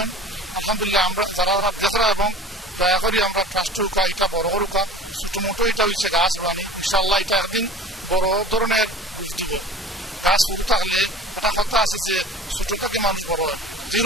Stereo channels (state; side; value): normal; both; correlation 0.40